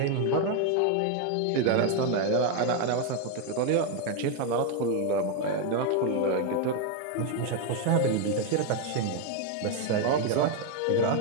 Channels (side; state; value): both; different; correlation 0.01